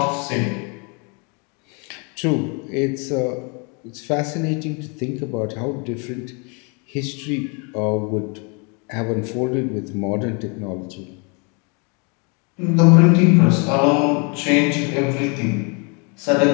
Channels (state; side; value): quieter; right; 33.7 dB